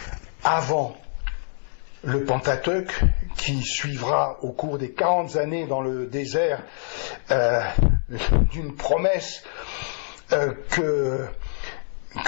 avant le Pentateuque, qui suivra au cours des 40 années dans le désert d'une promesse que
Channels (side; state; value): right; silent; 62 dB below the other